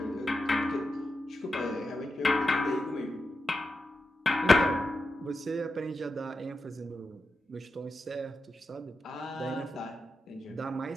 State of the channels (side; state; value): both; normal; correlation 0.89